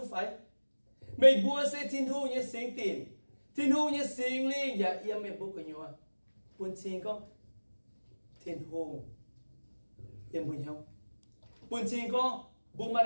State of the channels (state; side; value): inverted; both; correlation -1.00